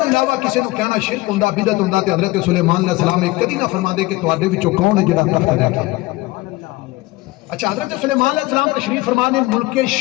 علاوہ کسی کو کہنا شرک ہوندا بدعت ہوندا تے حضرت سلیمان علیہ السلام ایک کدی نہ فرما دے کہ تواڈے وچوں کون ہے جڑا تخت لے کے۔ اچھا حضرت سلیمان علیہ السلام تشریف فرما نے ملک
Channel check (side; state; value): right; quieter; 20.3 dB